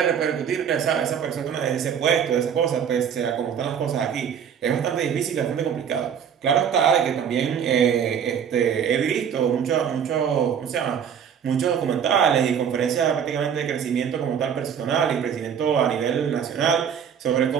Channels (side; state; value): left; quieter; 8.0 dB